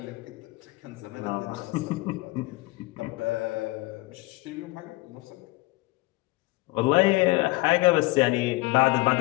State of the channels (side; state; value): right; quieter; 21.5 dB